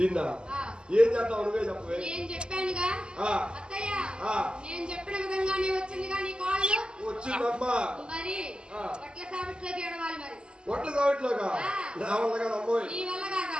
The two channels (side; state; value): left; late; 0.050 ms